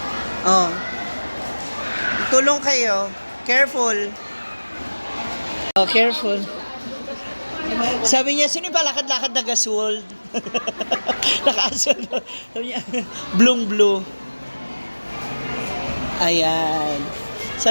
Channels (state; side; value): inverted; both; correlation -1.00